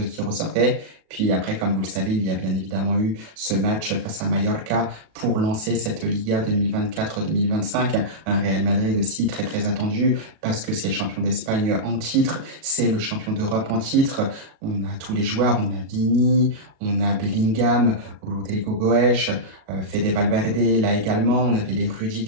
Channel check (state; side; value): late; left; 37 ms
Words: qui ressortait. Puis après, comme vous le savez, il y a bien évidemment eu ce match face à Mallorca pour lancer cette Liga 2024-2025. Un Real Madrid aussi très très attendu parce que c'est le champion d'Espagne en titre, c'est le champion d'Europe en titre. On a tous les joueurs, on a Vini, on a Bellingham, Rodrigo Goes, Fede Valverde là également, on avait les